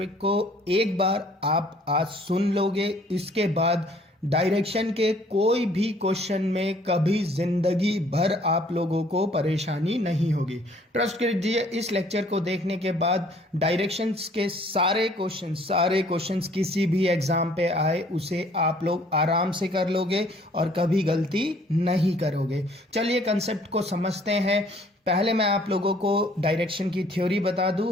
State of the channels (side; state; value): both; normal; correlation 0.58